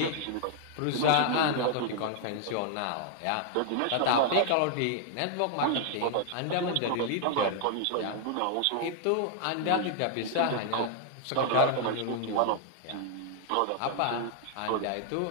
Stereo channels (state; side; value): different; both; correlation 0.00